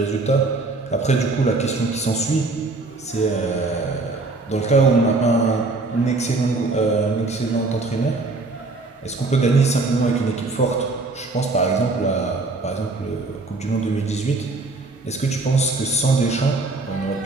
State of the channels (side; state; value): left; quieter; 3.4 dB